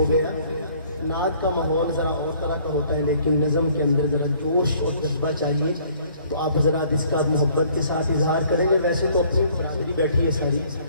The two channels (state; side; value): inverted; both; correlation -0.59